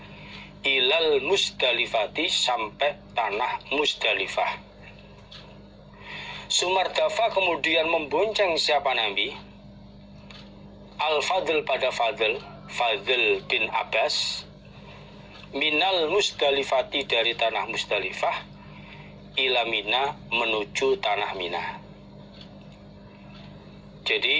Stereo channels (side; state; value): both; identical; correlation 1.00